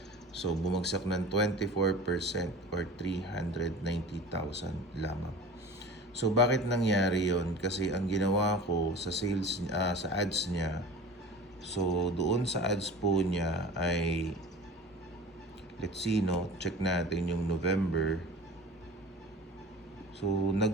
So, bumagsak ng 24% or 390,000 lamang. So, bakit nangyari yon? Kasi ang ginawa ko sa sales, sa ads niya, so doon sa ads po niya ay, let's see, no, check natin yung November. So,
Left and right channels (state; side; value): normal; both; correlation 0.39